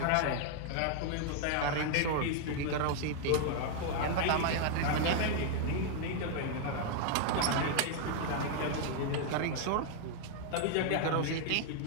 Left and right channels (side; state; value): both; different; correlation 0.00